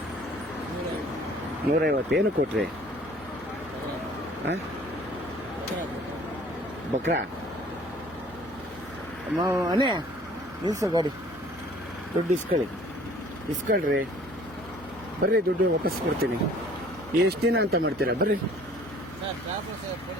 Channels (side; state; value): both; normal; correlation 0.53